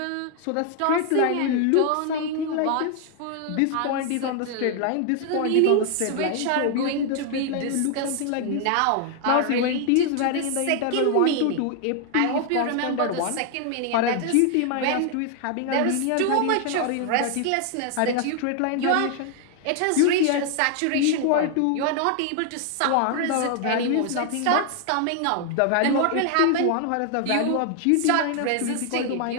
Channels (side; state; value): both; different; correlation 0.00